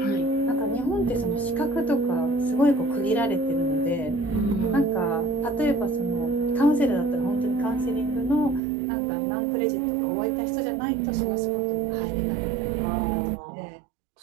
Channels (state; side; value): drops out; left; at 8.6 s